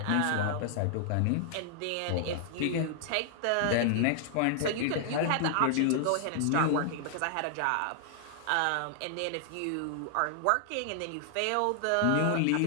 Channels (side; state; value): both; different; correlation -0.01